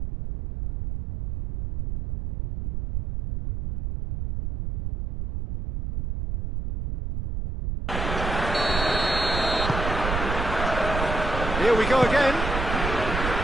Here we go again.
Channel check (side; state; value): right; noise; rumble, 4 dB below the sound